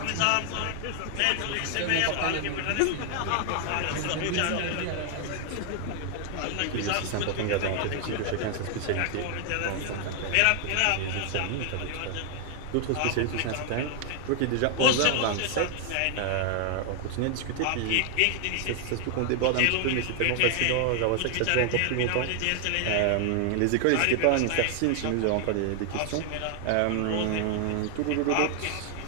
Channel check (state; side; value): different; both; correlation 0.00